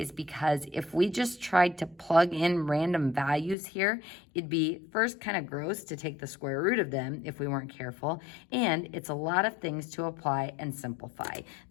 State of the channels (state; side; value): drops out; right; at 3.6 s